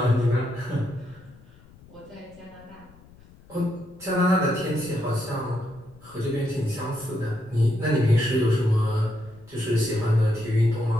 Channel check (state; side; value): noise; left; rumble, 25 dB below the sound